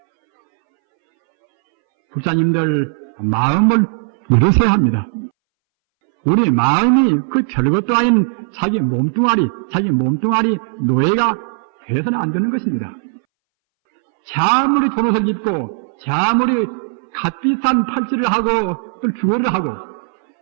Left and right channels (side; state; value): left; silent; 64 dB below the other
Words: 불자님들 마음을 열으셔야 합니다. 우리 마음이 그 별것도 아닌 자기 몸뚱아리 노예가 되어서는 안 되는 것입니다. 아무리 돈 옷을 입고 아무리 값비싼 팔찌를 하고 또 주얼을 하고